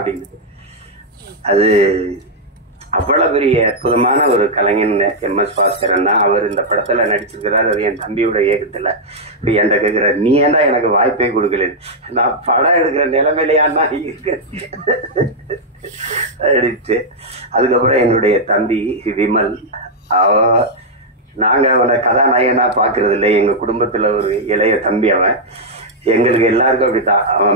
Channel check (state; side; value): normal; both; correlation -0.04